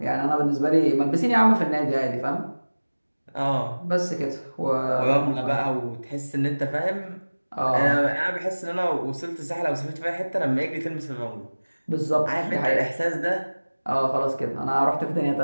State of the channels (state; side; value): inverted; both; correlation -1.00